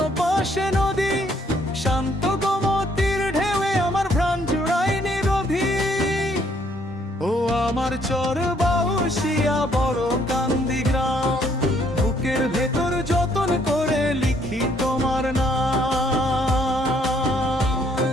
পাশে নদী, শান্ত গোমতীর ঢেউয়ে আমার প্রাণ জুড়ায় নিরোধী। ও আমার চর বাউশিয়া বড় কান্দি গ্রাম, বুকের ভেতর যতন করে লিখি তোমার নাম।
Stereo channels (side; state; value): both; normal; correlation 0.67